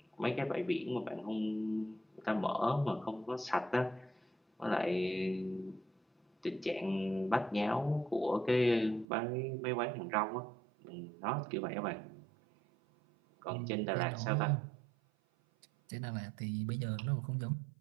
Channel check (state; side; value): drops out; left; at 9.1 s